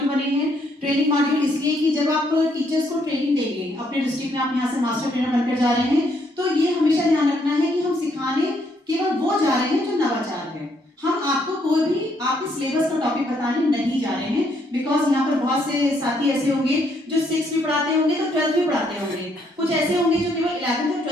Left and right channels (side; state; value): both; normal; correlation 0.71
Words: बने हैं। ट्रेनिंग मॉड्यूल इसलिए कि जब आप टीचर्स को ट्रेनिंग देंगे अपने डिस्ट्रिक्ट में, आप यहाँ से मास्टर ट्रेनर बनकर जा रहे हैं, तो ये हमेशा ध्यान रखना है कि हम सिखाने केवल वो जा रहे हैं जो नवाचार है। हम आपको कोई भी आपके सिलेबस का टॉपिक बताने नहीं जा रहे हैं, बिकॉज यहाँ पर बहुत से साथी ऐसे होंगे जो 6th भी पढ़ाते होंगे तो 12th भी पढ़ाते होंगे, कुछ ऐसे होंगे जो केवल 11th और